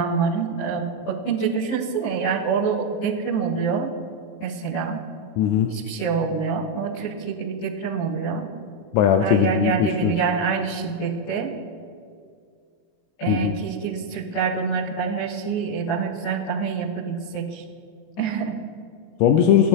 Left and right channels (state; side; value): late; right; 19 ms